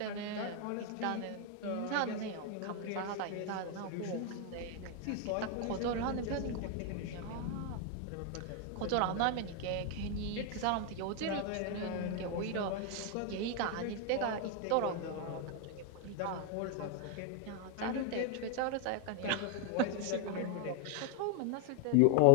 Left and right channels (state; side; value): different; both; correlation 0.01